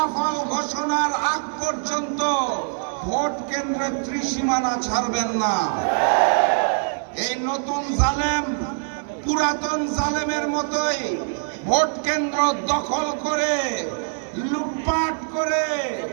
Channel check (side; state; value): left; silent; 63 dB below the other